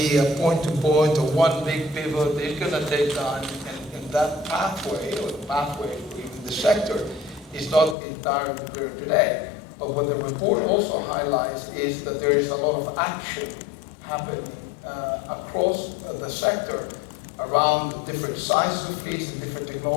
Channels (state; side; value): drops out; right; at 8.0 s